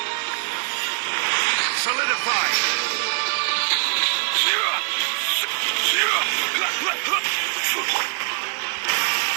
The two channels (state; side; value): silent; left; digital silence